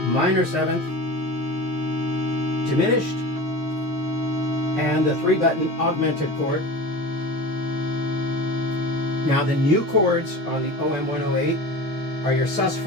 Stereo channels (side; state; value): both; normal; correlation 0.32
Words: minor seventh, diminished, and the 3-button augmented chord. Now the new chords on the OM-108 are your